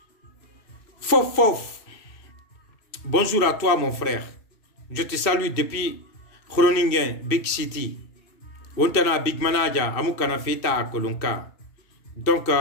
Fof bonjour à toi mon frère, je te salue depuis Groningen Big City. Ontana big manager amukana feta kolonka donc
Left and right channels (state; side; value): late; right; 2.6 ms